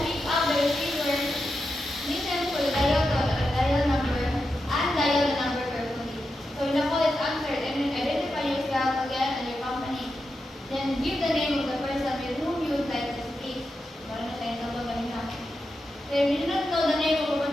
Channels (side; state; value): both; normal; correlation 0.88